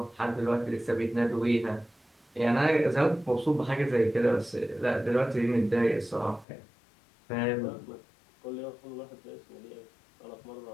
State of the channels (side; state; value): right; drops out; at 6.5 s